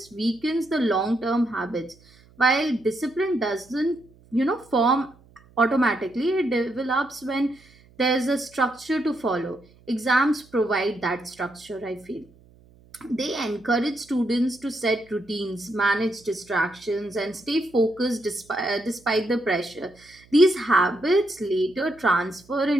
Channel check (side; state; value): right; noise; hum, 28 dB below the sound